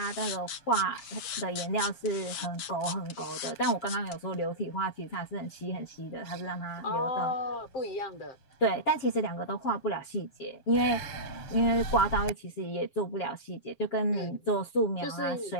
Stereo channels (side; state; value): right; late; 7.5 ms